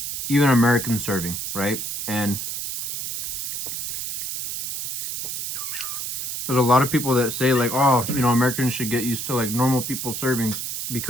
even American serving, right? And there's a lot of people that say like, oh, you know, Americans should get used to like normal people servings,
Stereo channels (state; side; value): noise; right; hiss, 4 dB below the sound